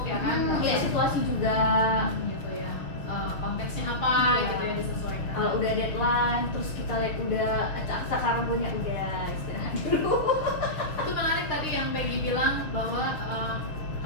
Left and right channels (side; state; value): right; late; 6.4 ms